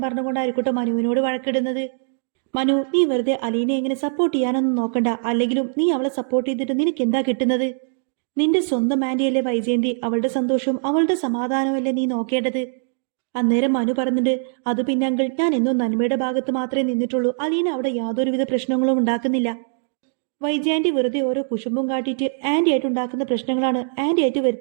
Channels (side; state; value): left; silent; digital silence